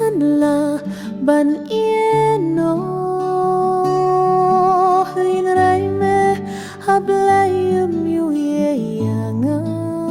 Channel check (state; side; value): identical; both; correlation 1.00